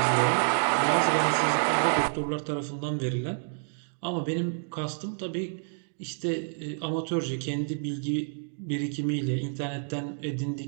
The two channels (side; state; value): left; silent; digital silence